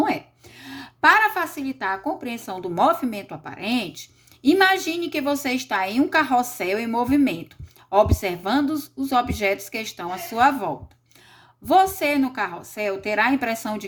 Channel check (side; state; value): both; identical; correlation 1.00